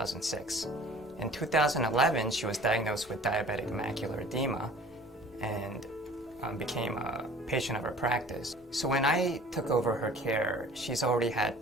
In 2011, she was diagnosed with diabetic macular edema and became a patient of our practice. So when I took over her care, she's already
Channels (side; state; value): both; normal; correlation 0.47